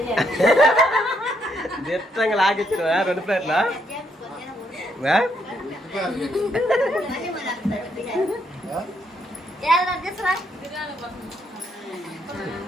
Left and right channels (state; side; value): normal; both; correlation 0.74